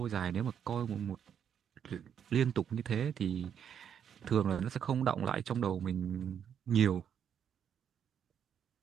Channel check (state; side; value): quieter; left; 8.4 dB